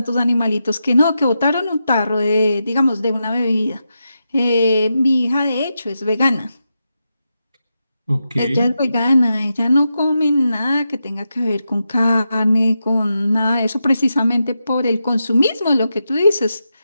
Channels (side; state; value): both; inverted; correlation -0.87